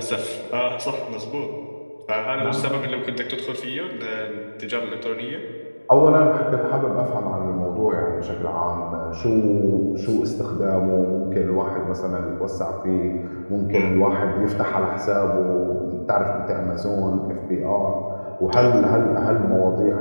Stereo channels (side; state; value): both; inverted; correlation -1.00